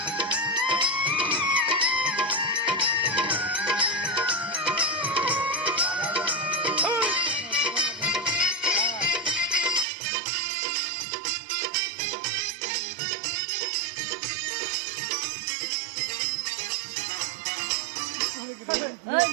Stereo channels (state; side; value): drops out; left; at 9.9 s